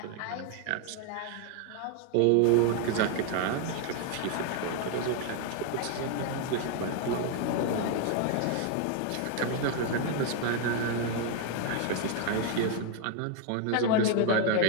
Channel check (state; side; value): different; both; correlation 0.01